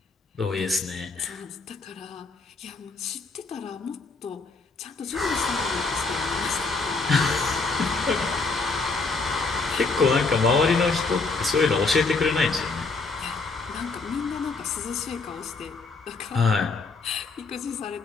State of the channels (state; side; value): quieter; right; 4.0 dB